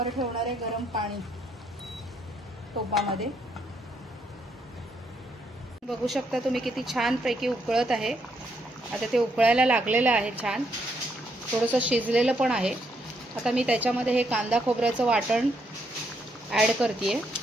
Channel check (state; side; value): normal; both; correlation 0.75